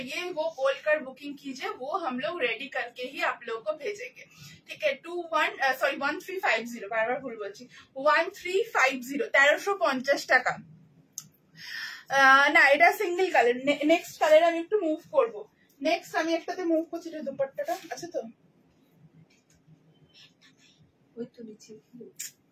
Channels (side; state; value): both; identical; correlation 1.00